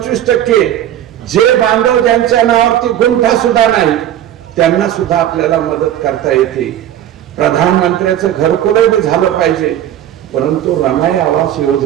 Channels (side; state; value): left; quieter; 11.5 dB